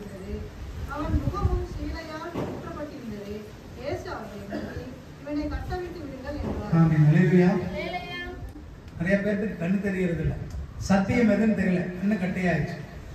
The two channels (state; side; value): identical; both; correlation 1.00